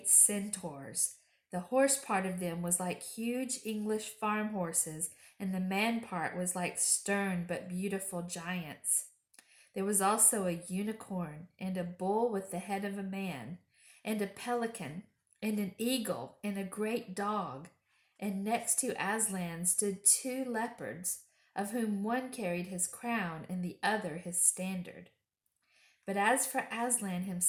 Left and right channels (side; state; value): both; identical; correlation 1.00